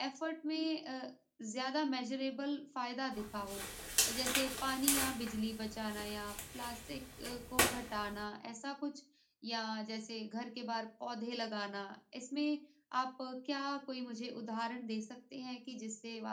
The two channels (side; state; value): both; identical; correlation 1.00